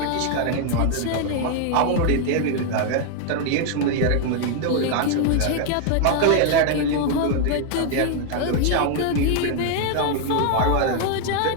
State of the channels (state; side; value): different; both; correlation 0.00